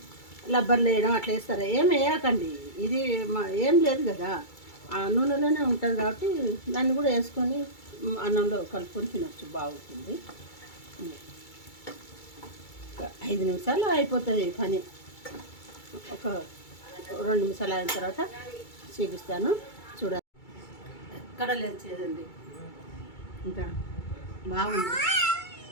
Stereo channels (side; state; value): right; late; 2.3 ms